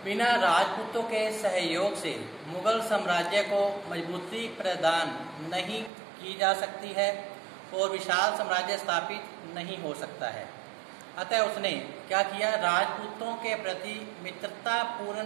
बिना राजपूतों के सहयोग से मुगल साम्राज्य को मजबूती प्रदान नहीं की जा सकती है और विशाल साम्राज्य स्थापित नहीं हो सकता है। अतः उसने क्या किया, राजपूतों के प्रति मित्रतापूर्ण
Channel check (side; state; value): left; drops out; at 5.9 s